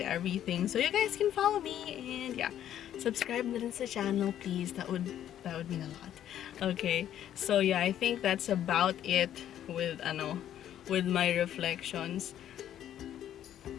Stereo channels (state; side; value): quieter; right; 11.0 dB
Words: everything, so you guys can follow me, and yeah, subscribe na rin sa channel, please. That would mean a lot. Okay, so yeah, I think that's about it with my reflections.